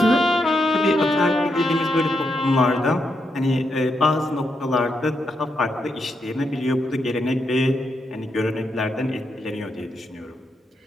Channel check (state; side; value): normal; both; correlation 0.82